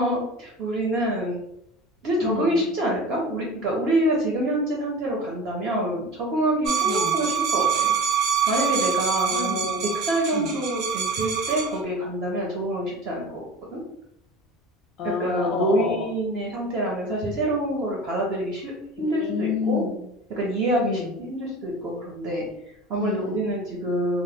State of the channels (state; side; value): normal; both; correlation 0.36